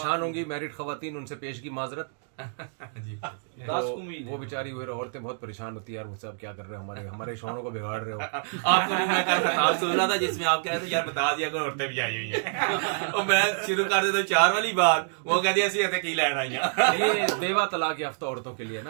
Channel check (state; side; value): silent; left; digital silence